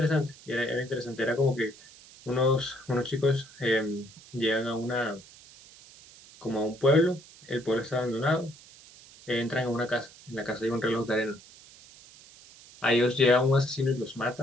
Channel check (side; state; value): right; noise; hiss, 22 dB below the sound